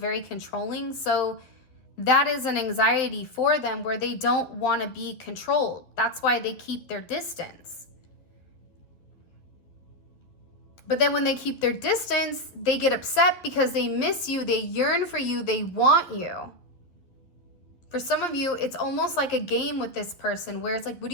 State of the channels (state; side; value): late; right; 11 ms